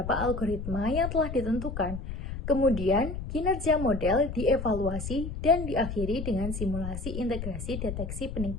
algoritma yang telah ditentukan. Kemudian, kinerja model dievaluasi dan diakhiri dengan simulasi integrasi deteksi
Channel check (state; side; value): noise; left; rumble, 6 dB below the sound